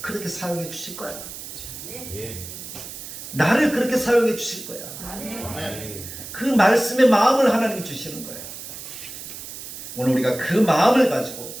사용해 주실 거야. 나를 그렇게 사용해 주실 거야. 그 말씀의 마음을 하나님이 주시는 거예요. 오늘 우리가 그 마음을 가지고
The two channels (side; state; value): right; noise; hiss, 11 dB below the sound